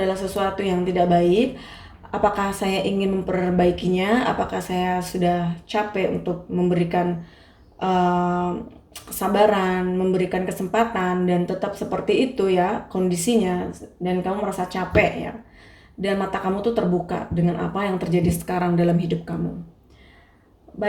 sesuatu yang tidak baik. Apakah saya ingin memperbaikinya? Apakah saya sudah capek untuk memberikan kesabaran, memberikan kesempatan, dan tetap seperti itu ya kondisinya, dan kamu merasa capek ya, dan mata kamu tuh terbuka dengan apa yang terjadi sekarang dalam hidup kamu.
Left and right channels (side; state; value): both; identical; correlation 1.00